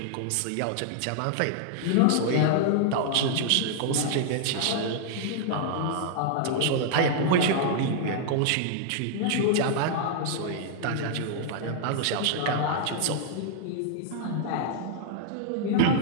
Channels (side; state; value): both; different; correlation -0.01